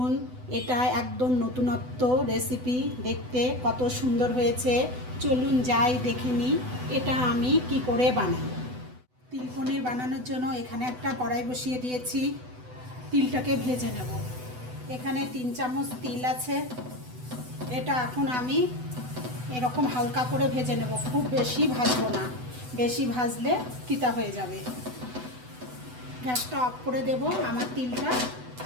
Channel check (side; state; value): left; late; 8.0 ms